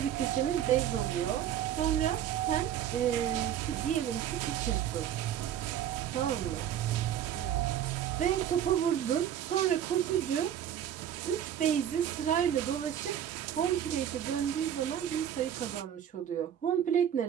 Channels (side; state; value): left; quieter; 10.1 dB